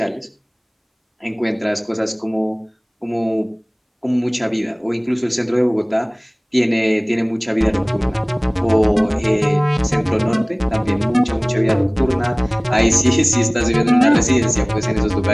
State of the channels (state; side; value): identical; both; correlation 1.00